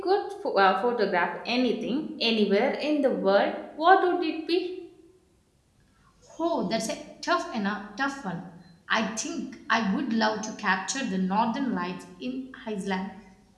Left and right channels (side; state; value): both; identical; correlation 1.00